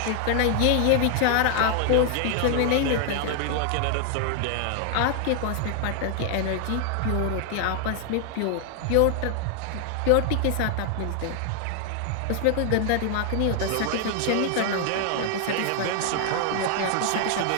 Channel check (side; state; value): both; different; correlation 0.00